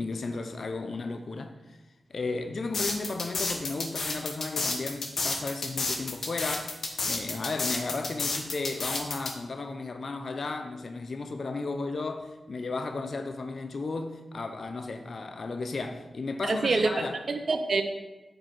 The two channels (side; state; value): both; normal; correlation 0.87